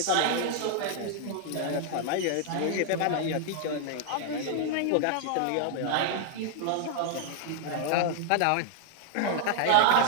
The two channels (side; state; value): both; different; correlation -0.01